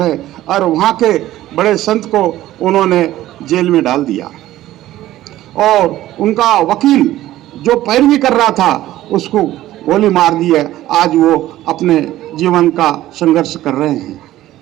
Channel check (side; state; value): left; quieter; 14.6 dB